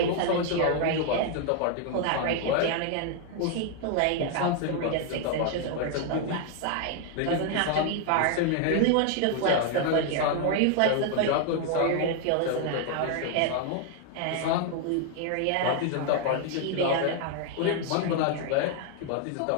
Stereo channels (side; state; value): both; different; correlation 0.00